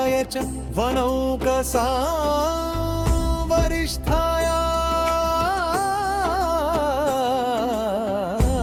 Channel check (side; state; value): both; identical; correlation 1.00